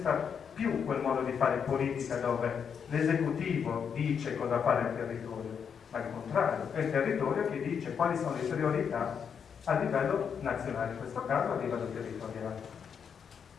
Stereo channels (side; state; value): right; quieter; 7.1 dB